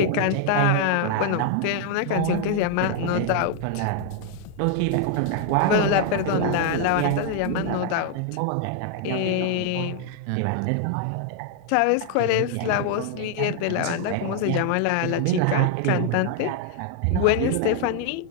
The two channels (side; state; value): both; different; correlation 0.00